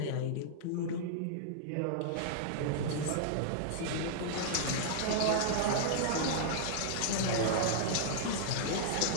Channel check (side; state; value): both; different; correlation -0.02